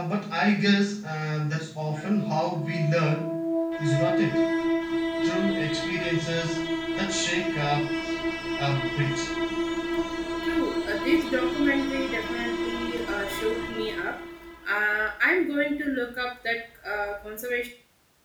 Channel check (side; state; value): both; identical; correlation 1.00